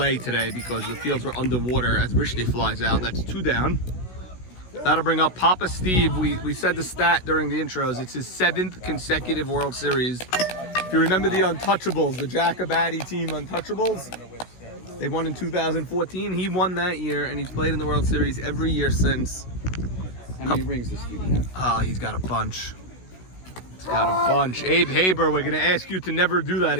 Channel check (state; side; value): late; right; 16 ms